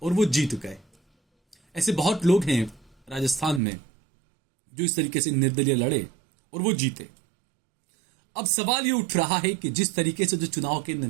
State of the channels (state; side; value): drops out; left; at 3.6 s